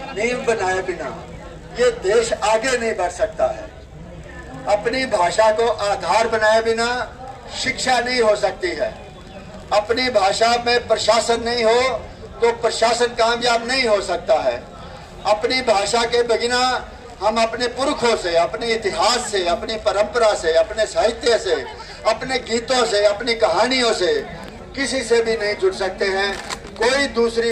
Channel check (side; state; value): both; identical; correlation 1.00